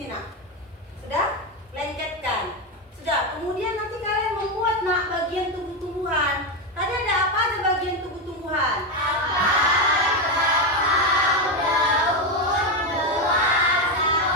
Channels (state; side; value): normal; both; correlation 0.10